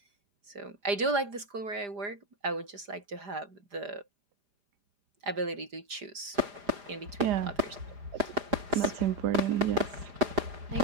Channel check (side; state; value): left; late; 4.9 ms